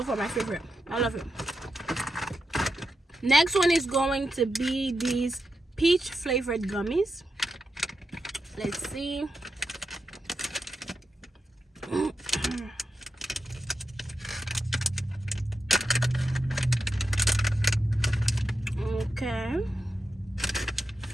far my favorite. I love it. Next one is going to be these peach flavored gummies. Let's see. Okay,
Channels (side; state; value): both; normal; correlation 0.87